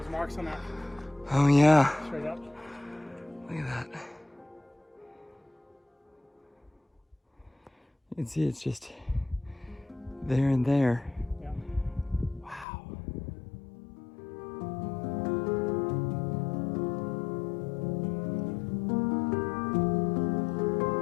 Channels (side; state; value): right; drops out; at 12.7 s